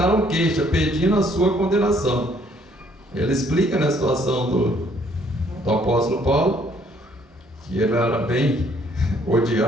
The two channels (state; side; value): normal; both; correlation 0.64